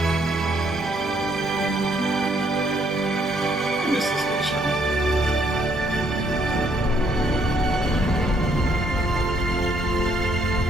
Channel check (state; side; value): normal; both; correlation 0.69